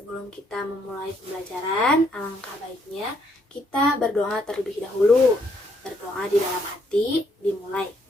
kita memulai pembelajaran, alangkah baiknya kita berdoa terlebih dahulu. Berdoa di dalam hati, dimulai.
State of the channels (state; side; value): normal; both; correlation 0.71